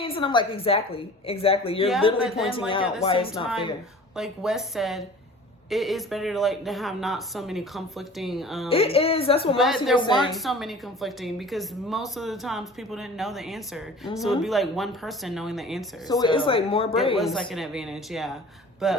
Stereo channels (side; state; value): both; normal; correlation 0.43